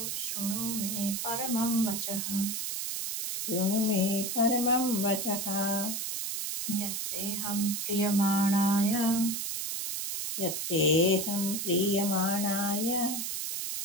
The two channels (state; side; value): noise; right; hiss, 3 dB below the sound